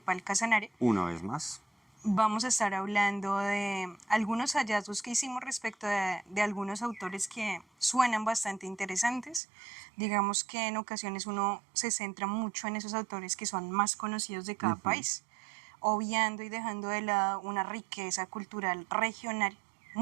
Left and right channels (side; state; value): left; drops out; at 9.4 s